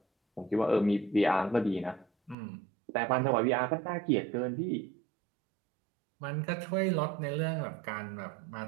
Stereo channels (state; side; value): drops out; left; at 2.4 s